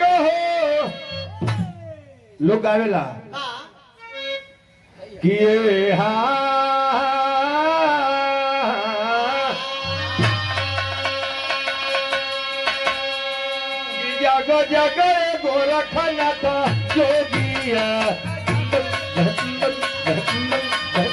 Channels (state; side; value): identical; both; correlation 1.00